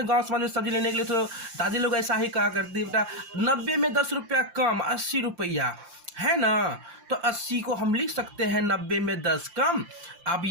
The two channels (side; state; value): left; late; 5.7 ms